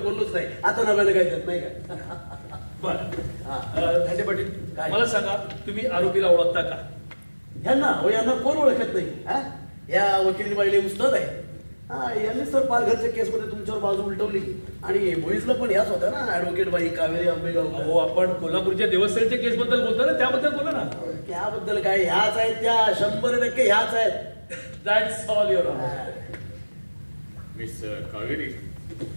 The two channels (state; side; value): inverted; both; correlation -1.00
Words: बोललोच नाही. आता नव्यानं काय देत नाही का? बर धांडे पाटील, मला सांगा तुम्ही आरोपीला ओळखता का? यांना कोण ओळखत नाही? या वकिली बाईले उस्ताद आहे. यांनी सर पालघरच्या केसमध्ये तुमच्यावर बाजू उलटवली आणि भोईसला पण ह्याच होत्या ना, ऍडव्होकेट बाई कावेरी आंबेगाव. हो, आपण कोल्हापूरच्या देवस्थळच्या केस बद्दल बोलतो ना, त्याबद्दल बोला ना. त्याबद्दल काय, ह्याच आहेत त्या, 100% ह्याच आहेत. That's all your honour. Miss Kaveri,